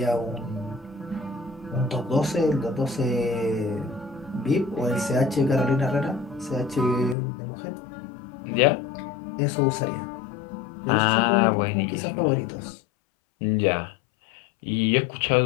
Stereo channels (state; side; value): drops out; right; at 7.2 s